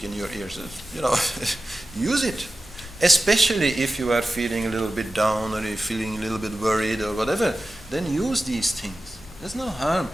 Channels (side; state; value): both; normal; correlation 0.94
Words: in your ears, use it. Especially if you are feeling a little bit down or you're feeling a little bit worried or whatever, then use these things. There's no harm.